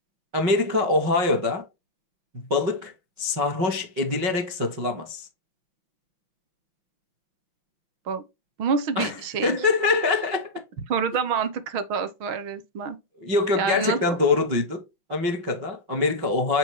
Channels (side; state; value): left; late; 5.4 ms